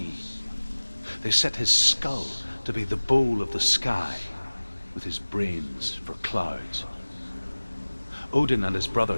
They set his skull to be the bowl of the sky, with his brains for clouds. Odin and his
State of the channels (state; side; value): inverted; both; correlation -1.00